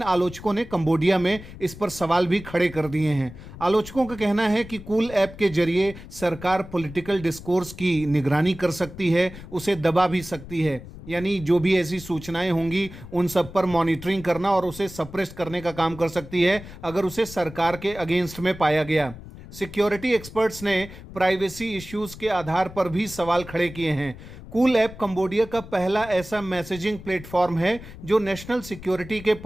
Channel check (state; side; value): noise; left; rumble, 15 dB below the sound